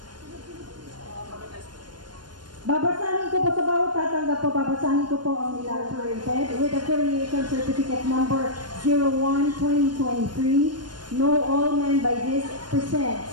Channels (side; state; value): left; late; 0.70 ms